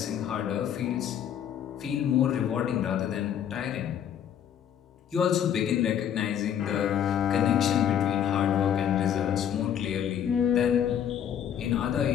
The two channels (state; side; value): quieter; right; 9.3 dB